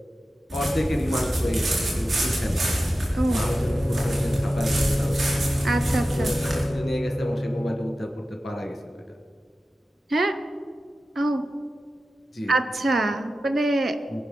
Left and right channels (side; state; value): both; normal; correlation 0.94